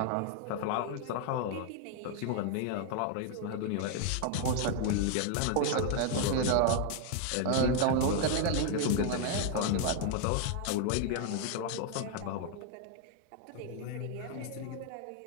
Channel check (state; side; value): different; both; correlation 0.00